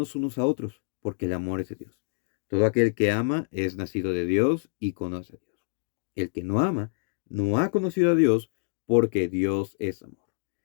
unos a otros, porque el amor es de Dios. Todo aquel que ama es nacido de Dios y conoce a Dios. El que no ama no ha conocido a Dios, porque Dios es amor.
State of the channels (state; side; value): silent; right; digital silence